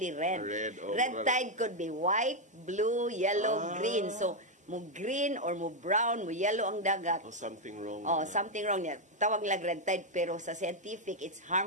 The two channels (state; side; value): normal; both; correlation 0.01